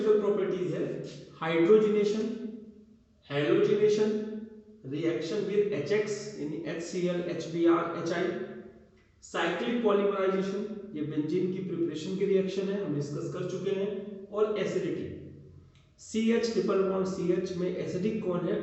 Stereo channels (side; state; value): both; identical; correlation 1.00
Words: प्रॉपर्टीज है, hydrogenation, halogenation, reaction with HX यानी HCl, HBr, HI, cyclic polymerisation, ये बेंजीन की प्रिपरेशन की रिएक्शन है, हम डिस्कस कर चुके हैं, और acidity, CH triple bond CH में एसिडिक कौन है